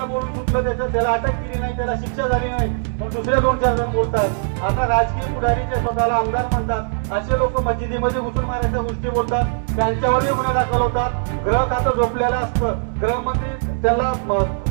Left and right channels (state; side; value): silent; left; digital silence